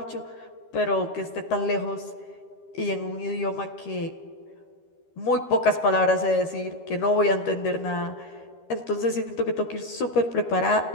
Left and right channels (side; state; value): right; late; 13 ms